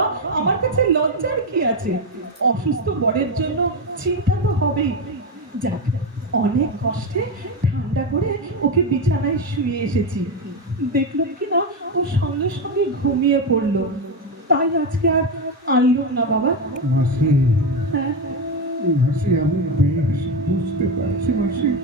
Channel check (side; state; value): both; normal; correlation 0.11